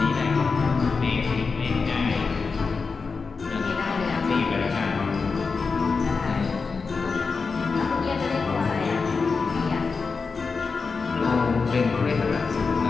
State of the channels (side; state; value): right; quieter; 4.7 dB